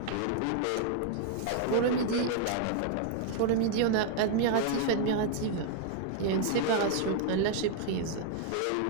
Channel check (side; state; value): both; different; correlation 0.00